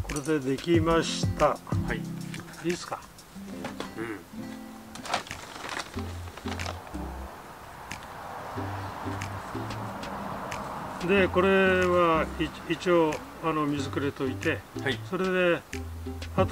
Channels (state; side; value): identical; both; correlation 1.00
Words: これでできました。はい。いいですか。うん。でこれは一応水くれといて、はい、それで